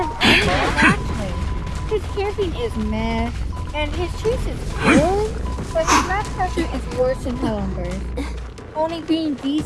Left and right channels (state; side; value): identical; both; correlation 1.00